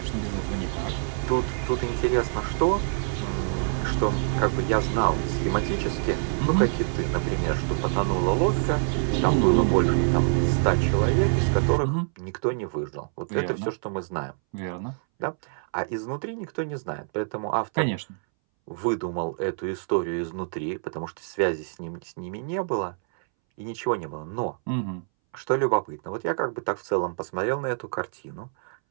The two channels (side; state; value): left; silent; 61 dB below the other